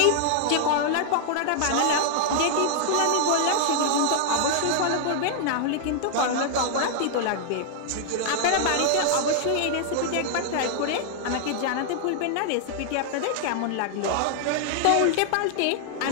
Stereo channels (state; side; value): different; both; correlation 0.00